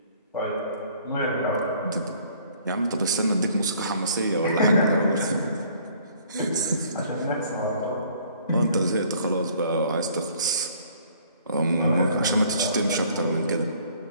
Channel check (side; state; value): both; inverted; correlation -0.58